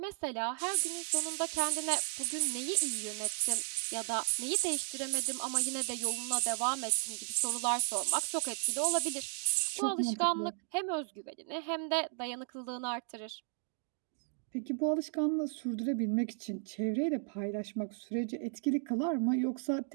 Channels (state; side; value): silent; left; 55 dB below the other